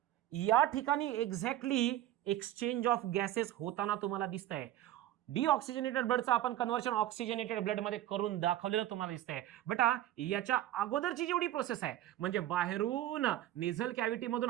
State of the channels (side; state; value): left; quieter; 13.5 dB